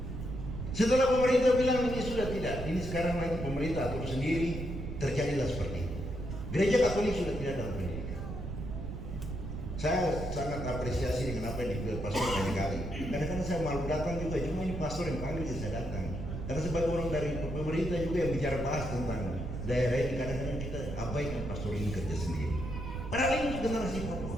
Setelah pemerintah bilang ini sudah tidak, ini sekarang nanti pemerintah atur sendiri, terjadilah seperti itu. Gereja Katolik sudah tidak dalam pendidikan. Saya sangat apresiasi dengan apa yang dibilang pastor banyak kali. Kadang-kadang saya malu datang juga, cuma ini pastor yang panggil saya datang. Karena sebagai orang dari pemerintah juga yang bicara bahas tentang daerah ini, kadang-kadang kita abaikan pastor ini kerja sendiri. Padahal ini generasi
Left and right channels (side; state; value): right; noise; rumble, 6 dB below the sound